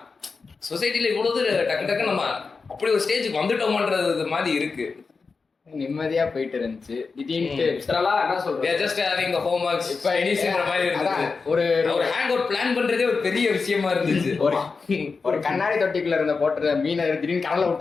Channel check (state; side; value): quieter; right; 4.6 dB